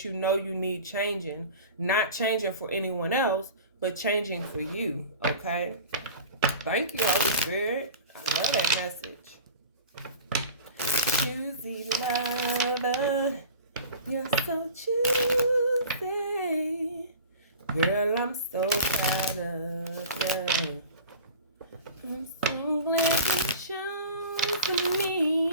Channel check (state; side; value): inverted; both; correlation -0.38